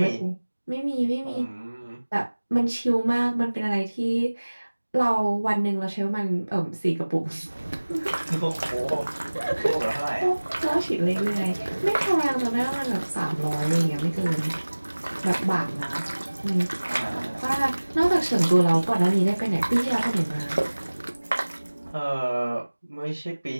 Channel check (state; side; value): inverted; both; correlation -1.00